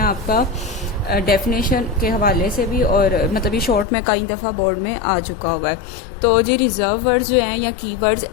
आपका डेफिनेशन के हवाले से भी, और मतलब ये शॉर्ट में कई दफ़ा बोर्ड में आ चुका हुआ है। तो जी रिजर्व वर्ड्स जो हैं या कीवर्ड्स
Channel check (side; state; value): right; drops out; at 3.9 s